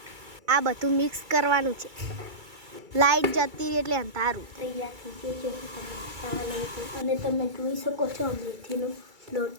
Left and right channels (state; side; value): late; left; 2.3 ms